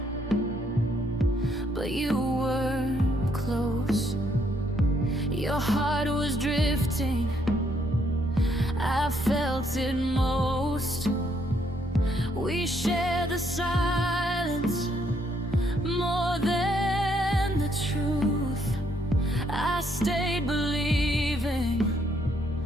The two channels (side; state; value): both; normal; correlation 0.71